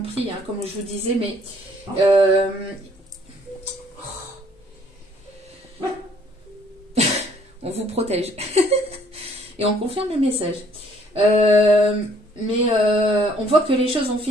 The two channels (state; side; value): normal; both; correlation 0.62